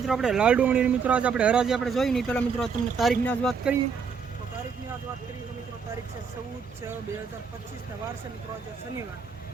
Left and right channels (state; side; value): quieter; left; 5.9 dB